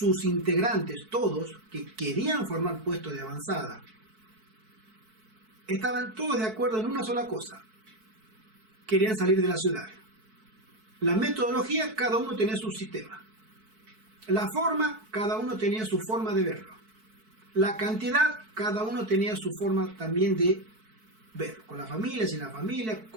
integrantes, todos que querían formar puestos de avanzada, estaban todos de acuerdo en una sola cosa: querían salir de la ciudad. La metodología, cada uno tenía su sistema. La forma, cada uno tenía su forma de verlo. La cantidad, cada uno tenía su forma también de verlo. Con la familia, sin la familia,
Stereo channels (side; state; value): left; late; 4.6 ms